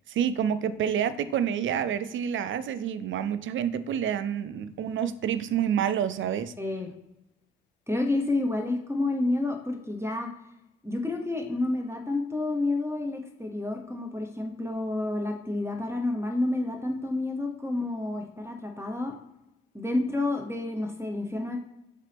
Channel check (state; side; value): normal; both; correlation 0.62